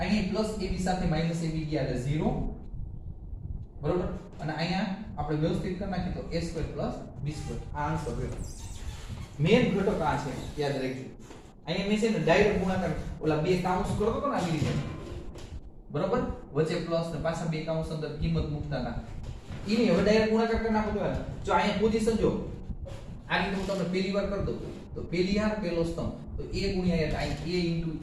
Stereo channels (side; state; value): both; identical; correlation 1.00